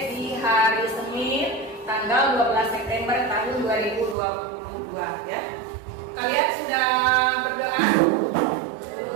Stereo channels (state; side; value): drops out; left; at 4.2 s